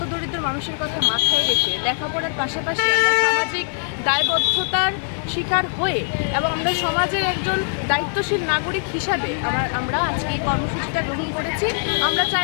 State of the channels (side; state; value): right; silent; digital silence